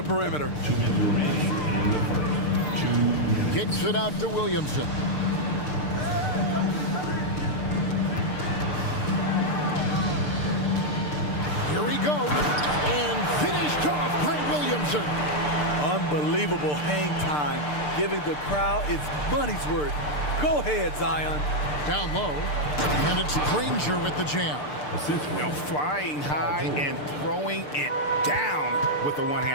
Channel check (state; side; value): late; right; 6.7 ms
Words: perimeter. 2 minutes remaining in the first. 2 minutes. Kicks it out to Williamson. Here he goes. And finished off by Williamson. Unbelievable hang time, giving the crowd its money's worth. Go ahead, Zion. Down low. And it's Granger with the jam. Well, flying high and throwing it down with the